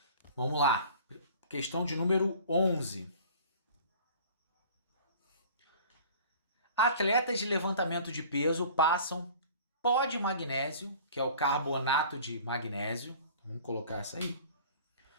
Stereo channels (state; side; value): inverted; both; correlation -0.46